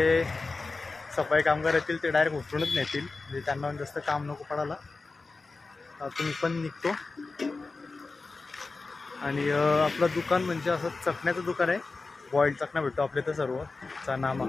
सफाई कामगार येतील ते डायरेक्ट उचलूनच नेतील, म्हणजे त्यांना जास्त काम नको पडायला. तुम्ही पण निघतो. आणि आपलं दुकान म्हणजे असं चकण्याचं दुकान आहे. बॉईल्ड चकना भेटतो आपल्या इथं सर्व. चणा,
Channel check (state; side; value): quieter; right; 3.8 dB